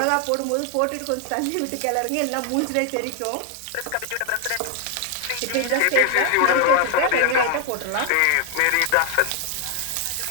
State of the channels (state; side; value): different; both; correlation 0.00